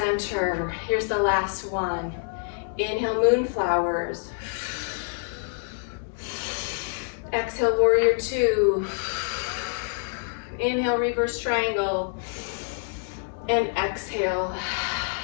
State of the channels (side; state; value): right; silent; 61 dB below the other